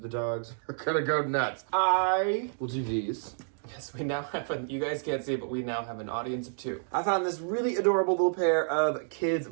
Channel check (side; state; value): left; silent; digital silence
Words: dogs are gonna go nuts. I will do these. Yes, we now have you guys can't see it, but we now have an audience of 2. I found this really adorable little pair of kids